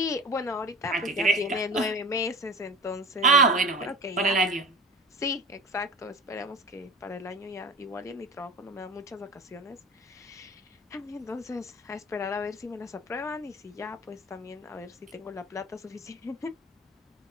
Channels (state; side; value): normal; both; correlation 0.36